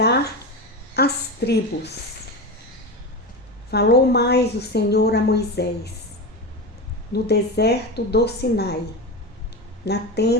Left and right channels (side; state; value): both; normal; correlation 0.21